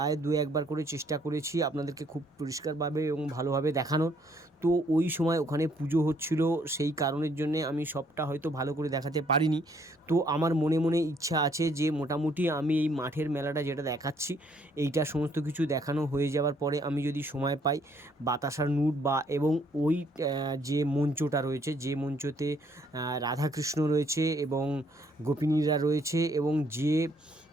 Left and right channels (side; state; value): both; normal; correlation 0.66